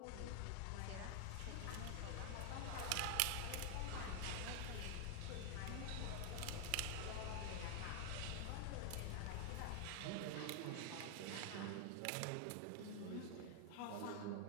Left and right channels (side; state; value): both; different; correlation 0.00